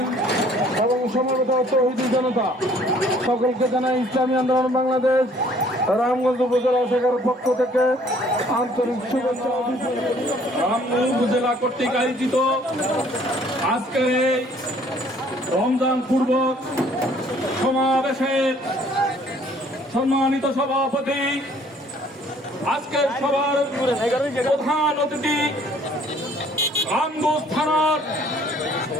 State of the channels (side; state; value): both; normal; correlation 0.58